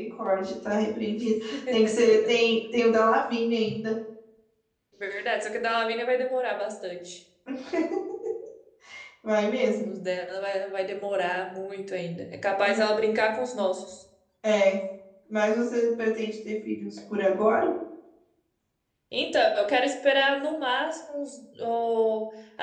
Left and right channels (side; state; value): both; identical; correlation 1.00